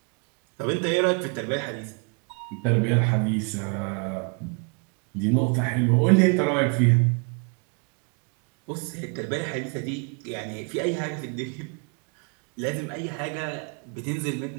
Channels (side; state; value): left; quieter; 36.6 dB